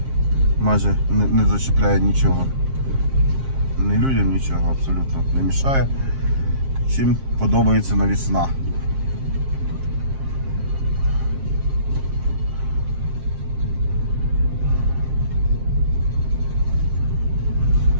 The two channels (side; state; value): left; late; 7.5 ms